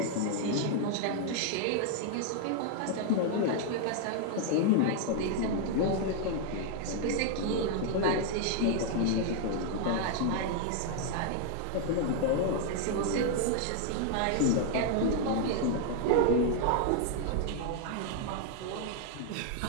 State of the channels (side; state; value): both; different; correlation 0.00